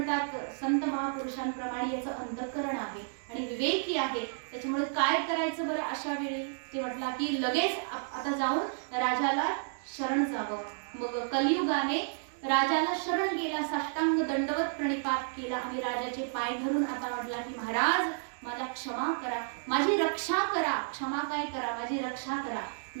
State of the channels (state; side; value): silent; left; digital silence